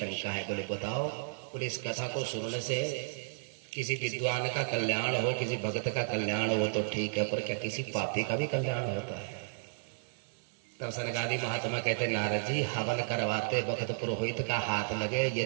है। बोले बताओ। बोले इस कथा को सुनने से किसी विद्वान का कल्याण हो, किसी भक्त का कल्याण हो तो ठीक है, पर क्या किसी पापी का भी कल्याण होता है? तब सनकादि महात्मा कहते, नारद जी हवन करवाते वक्त पुरोहित का हाथ लगे,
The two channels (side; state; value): left; silent; digital silence